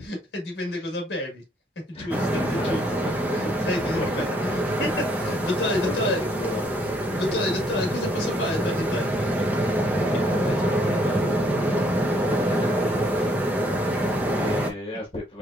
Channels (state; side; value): normal; both; correlation 0.67